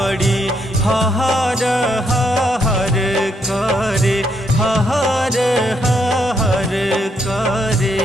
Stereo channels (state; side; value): normal; both; correlation 0.76